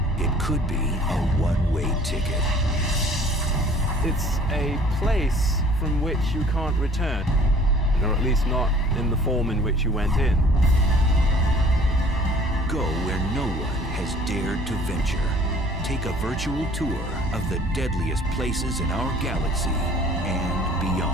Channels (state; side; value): normal; both; correlation 0.52